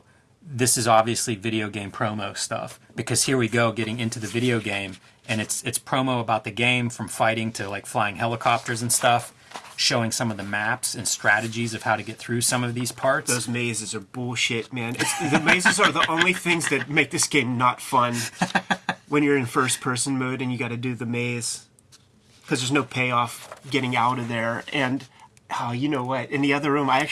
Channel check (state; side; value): identical; both; correlation 1.00